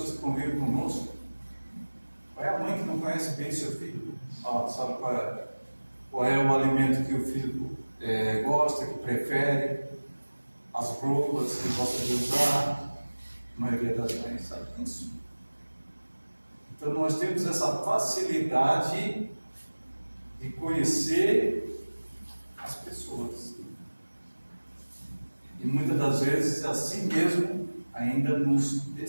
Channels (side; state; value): both; inverted; correlation -1.00